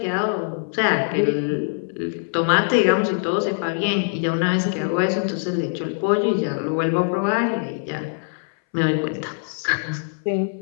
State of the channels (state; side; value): silent; right; 62 dB below the other